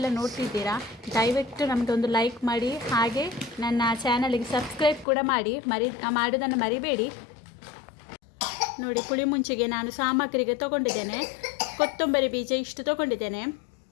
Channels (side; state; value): right; drops out; at 5.1 s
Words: ನೋಡ್ತಿದ್ದೀರಾ ದಯವಿಟ್ಟು ನಮಗೊಂದು ಲೈಕ್ ಮಾಡಿ, ಹಾಗೆ ನನ್ನ ಚಾನಲ್ಗೆ ಸಬ್ಸ್ಕ್ರೈಬ್ ಕೂಡ ಮಾಡಿ. ಮಾಡೋದನ್ನು ಮರಿಬೇಡಿ. ನೋಡಿ, ಪುಳಿಮುಂಚಿಗೆ ನಾನು ಸಾಮಗ್ರಿಗೆ ತೊಗೊಂಡಿದ್ದೇನೆ. ಕೊತ್ತಂಬರಿ ಬೀಜ ಇಷ್ಟು ತೊಗೊಂಡಿದ್ದೇನೆ.